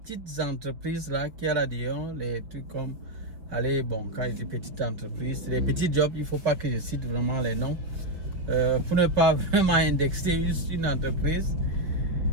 entreprises là, qui a là-dedans, les trucs comme, allez, bon, quand je dis petites entreprises, les petits jobs, il ne faut pas que je cite vraiment les noms, pour ne pas vraiment indexer une entreprise.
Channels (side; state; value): left; late; 5.2 ms